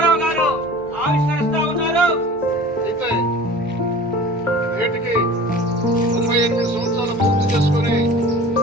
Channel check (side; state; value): both; normal; correlation 0.41